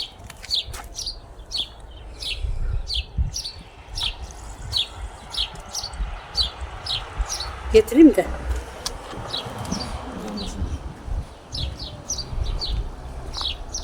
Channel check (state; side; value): identical; both; correlation 1.00